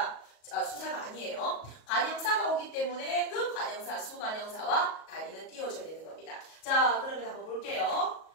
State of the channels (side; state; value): right; late; 37 ms